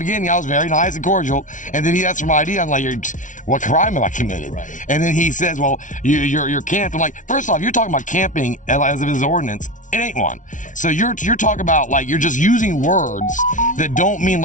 beginning, I was very nice and cordial, and then he asked for my ID. I'm like, what crime have I committed? Right. And then he says, well, you're camped. I'm like, first off, you're talking about camping as if it's an ordinance. It ain't one. So you're talking about, like, you're just using words that don't mean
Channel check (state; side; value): late; right; 0.37 ms